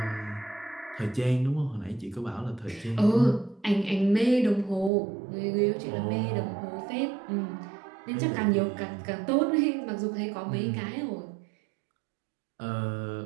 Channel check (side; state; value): left; drops out; at 4.9 s